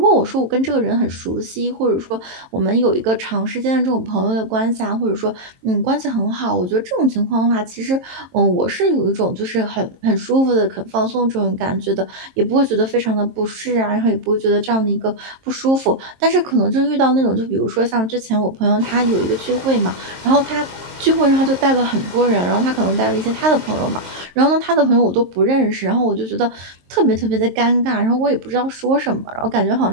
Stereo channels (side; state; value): left; late; 23 ms